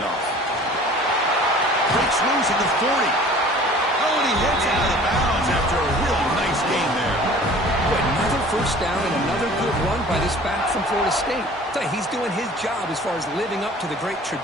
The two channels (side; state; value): both; normal; correlation 0.47